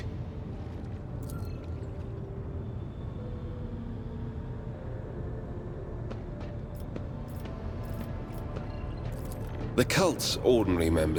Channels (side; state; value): both; identical; correlation 1.00